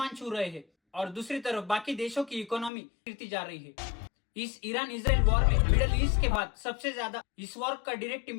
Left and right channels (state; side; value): drops out; right; at 2.7 s